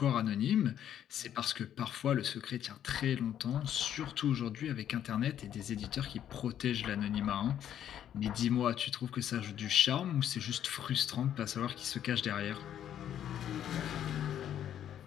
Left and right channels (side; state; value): right; quieter; 10.3 dB